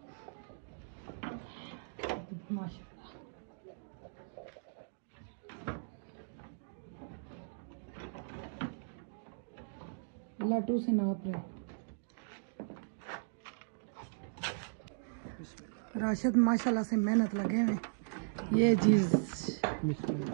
माशाल्लाह लड्डू से नाप रहे। राशिद माशाल्लाह से मेहनत लगे हुए। ये चीज़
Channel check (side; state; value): left; silent; digital silence